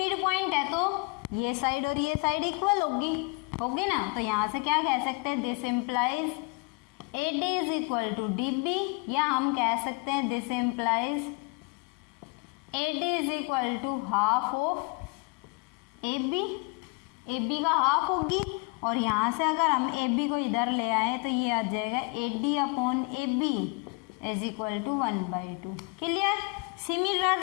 पॉइंट है तो ये साइड और ये साइड इक्वल होगी ना। तो यहाँ से क्या कह सकते हैं, this implies A D is equal to D B, या हम कह सकते हैं this implies A D is equal to half of A B का हाफ होगी। और यहाँ से अगर हम ए बी को इधर ले आए तो ये आ जाएगा A D upon A B is equal to 1/2। Clear.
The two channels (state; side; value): quieter; right; 30.8 dB